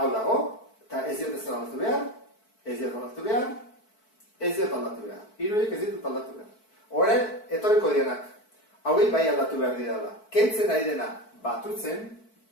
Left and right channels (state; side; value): late; right; 4.5 ms